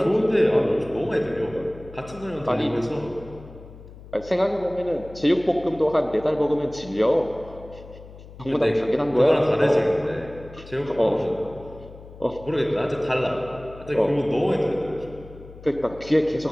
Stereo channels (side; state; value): left; noise; hum, 18 dB below the sound